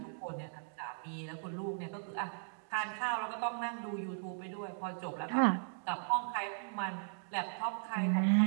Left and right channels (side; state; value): left; silent; digital silence